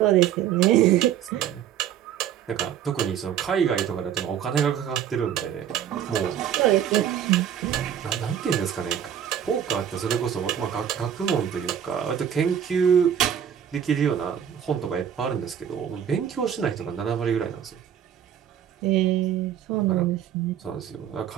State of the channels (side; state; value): left; quieter; 9.4 dB